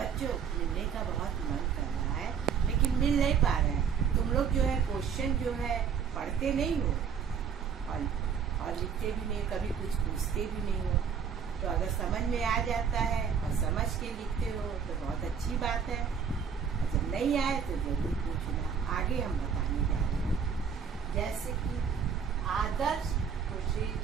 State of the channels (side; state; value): left; quieter; 6.9 dB